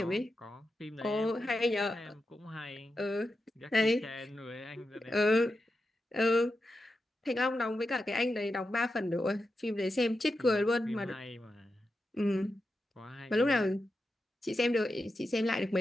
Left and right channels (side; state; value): both; normal; correlation 0.89